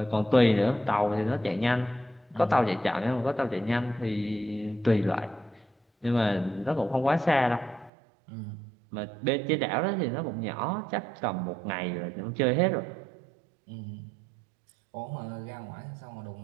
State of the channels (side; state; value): left; drops out; at 7.9 s